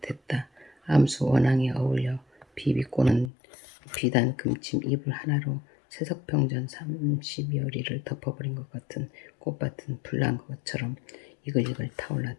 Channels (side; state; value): right; drops out; at 3.3 s